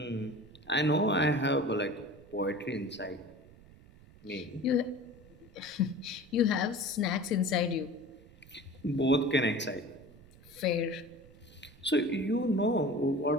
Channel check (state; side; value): noise; right; rumble, 23 dB below the sound